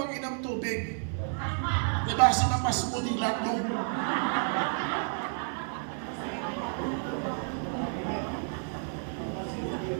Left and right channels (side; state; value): left; silent; 57 dB below the other